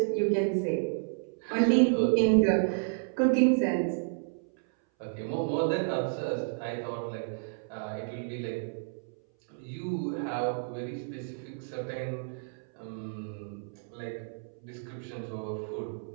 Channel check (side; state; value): left; silent; 57 dB below the other